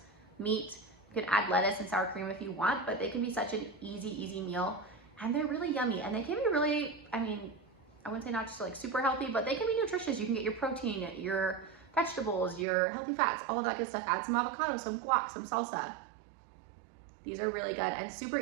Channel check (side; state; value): left; drops out; at 12.7 s